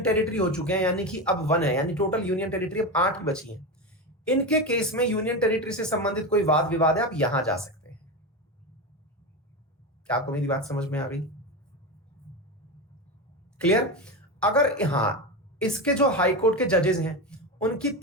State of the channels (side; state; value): both; normal; correlation 0.18